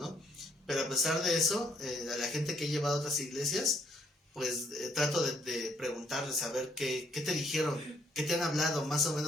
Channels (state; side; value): normal; both; correlation 0.68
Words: Pero a pesar de eso, a la gente que he llevado a otras iglesias, pues trato de preguntarles, a ver qué te dijeron, qué te han hablado, más o